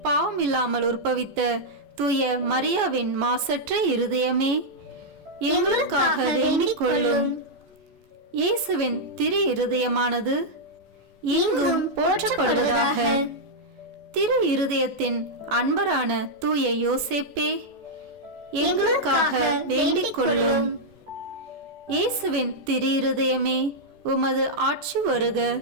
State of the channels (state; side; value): late; left; 14 ms